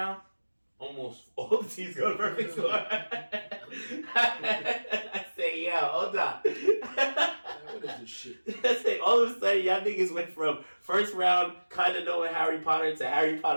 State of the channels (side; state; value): both; inverted; correlation -1.00